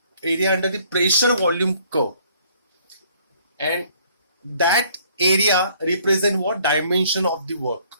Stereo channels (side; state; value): both; inverted; correlation -0.61